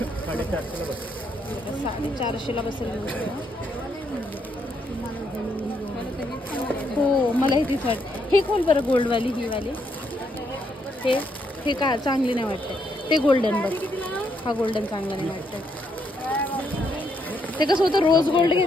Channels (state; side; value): normal; both; correlation 0.75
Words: बसेल. हो, मला हे तीच वाटते. हे खोल बरं, गोल्डवाली ही वाली. हे का चांगली नाही वाटते. ते गोल्डन बघ, हा गोल्डन चांगला नाही वाटत. ते कसं होतं, रोज गोल्ड